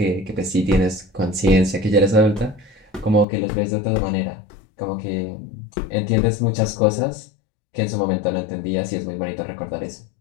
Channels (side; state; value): right; drops out; at 3.2 s